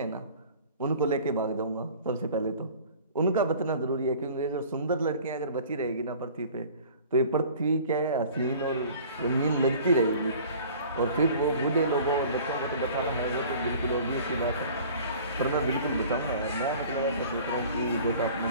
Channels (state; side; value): inverted; both; correlation -0.46